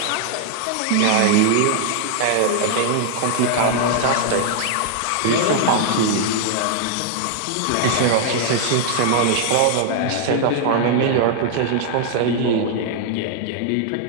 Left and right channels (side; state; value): both; different; correlation -0.01